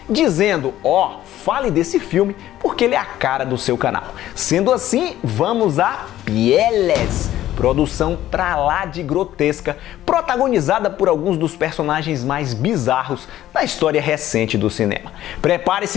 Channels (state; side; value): quieter; right; 13.4 dB